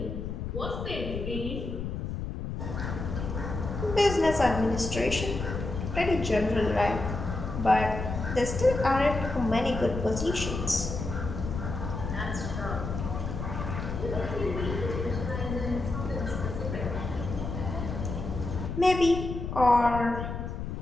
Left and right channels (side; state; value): left; noise; rumble, 5 dB below the sound